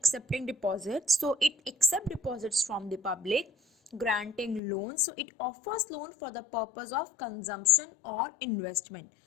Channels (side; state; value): right; drops out; at 4.6 s